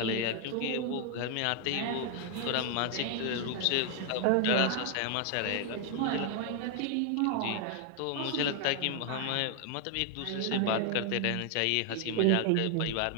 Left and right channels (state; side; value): different; both; correlation 0.00